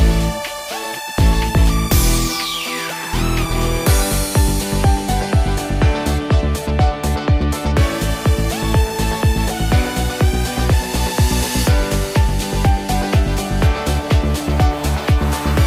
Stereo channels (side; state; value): both; identical; correlation 1.00